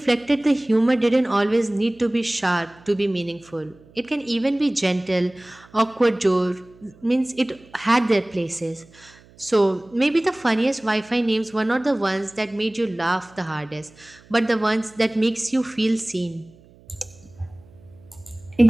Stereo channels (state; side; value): noise; right; hum, 26 dB below the sound